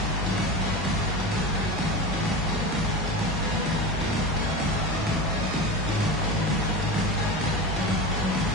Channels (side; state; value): both; normal; correlation 0.25